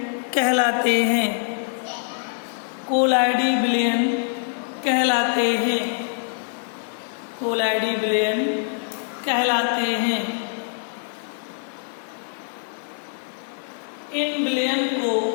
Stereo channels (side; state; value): right; silent; 58 dB below the other